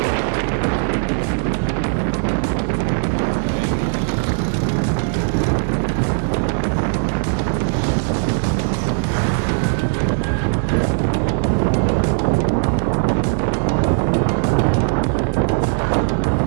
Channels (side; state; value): left; silent; digital silence